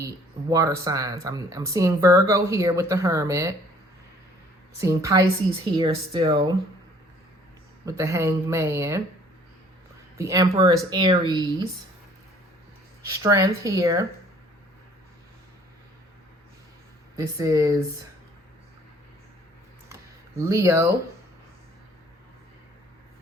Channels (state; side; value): normal; both; correlation 0.57